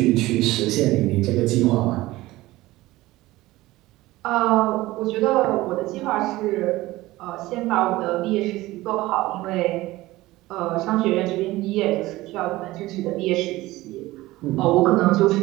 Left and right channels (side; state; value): left; quieter; 18.2 dB